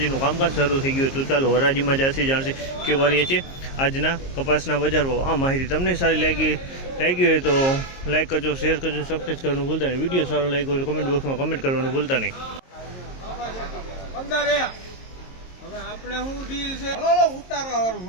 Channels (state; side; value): late; right; 22 ms